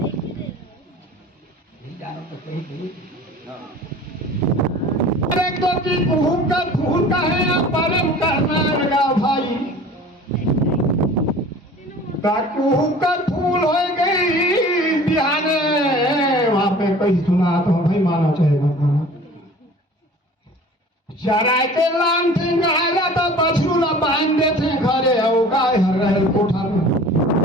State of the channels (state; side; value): normal; both; correlation 0.44